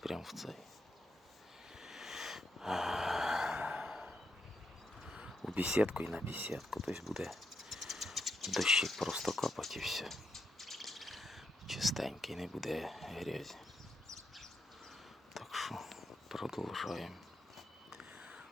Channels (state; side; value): normal; both; correlation 0.81